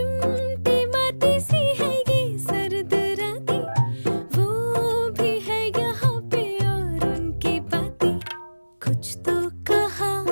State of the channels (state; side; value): inverted; both; correlation -1.00